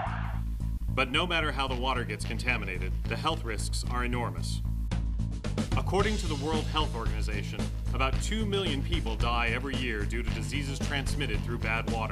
But no matter how the water gets contaminated, the health risks are enormous. According to the World Health Organization, about 2 million people die every year due to diseases transmitted through bad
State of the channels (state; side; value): identical; both; correlation 1.00